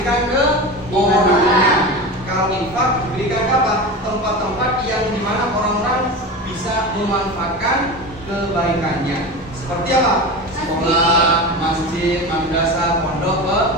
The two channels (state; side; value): normal; both; correlation 0.27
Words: ke orangnya. Kalau infak diberikan ke apa? Tempat-tempat yang dimana orang-orang bisa memanfaatkan kebaikannya. Seperti apa? Sekolah, masjid, madrasah,